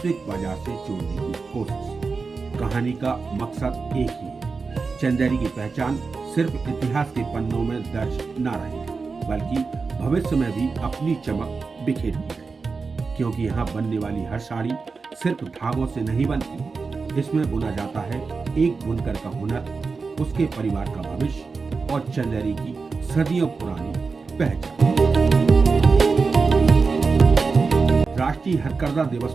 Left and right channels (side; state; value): left; quieter; 4.6 dB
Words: बाजार से जोड़ने की कोशिश, कहानी का मकसद एक ही है। चंदेरी की पहचान सिर्फ इतिहास के पन्नों में दर्ज न रहे बल्कि भविष्य में भी अपनी चमक बिखेरती है, क्योंकि यहाँ बनने वाली हर साड़ी सिर्फ धागों से नहीं बनती, इसमें बुना जाता है एक बुनकर का हुनर, उसके परिवार का भविष्य और चंदेरी की सदियों पुरानी पहचान। राष्ट्रीय हथकरघा दिवस